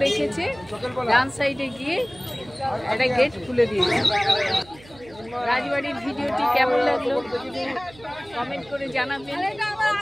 রেখেছে, ডান সাইডে গিয়ে একটা গেট খুলে দিয়েছে। রাজবাড়ির ভিডিওটি কেমন লাগলো কমেন্ট করে জানাবেন,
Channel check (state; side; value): noise; right; hum, 22 dB below the sound